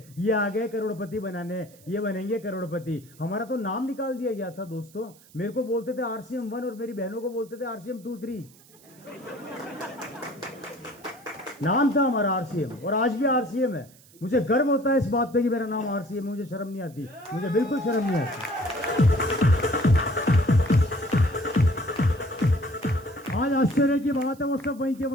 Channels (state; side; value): noise; right; hiss, 26 dB below the sound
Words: ये आ गए करोड़पति बनाने, ये बनेंगे करोड़पति। हमारा तो नाम निकाल दिया गया था दोस्तों। मेरे को बोलते थे आरसीएम 1 और मेरी बहनों को बोलते थे आरसीएम 2, 3। नाम था हमारा आरसीएम, और आज भी आरसीएम है। मुझे गर्व होता है इस बात पे कि मेरा नाम आरसीएम, मुझे शर्म नहीं आती, मुझे बिल्कुल शर्म नहीं आती। आज आश्चर्य की बात है, वो सब वहीं के